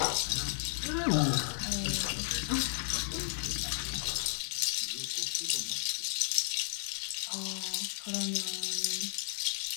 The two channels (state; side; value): silent; right; digital silence